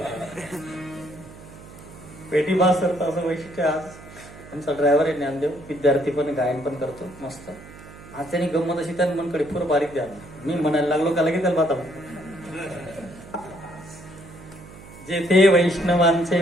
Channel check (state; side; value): noise; right; hum, 18 dB below the sound